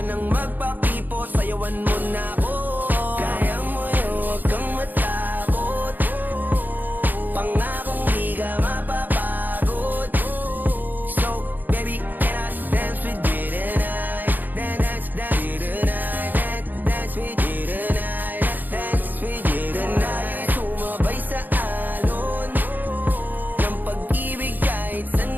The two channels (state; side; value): late; left; 0.087 ms